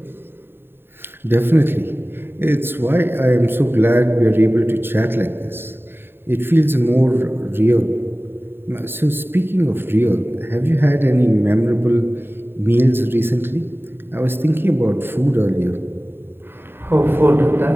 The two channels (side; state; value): left; late; 0.11 ms